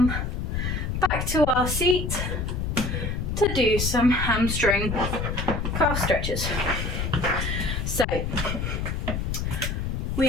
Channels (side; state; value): left; noise; rumble, 2 dB below the sound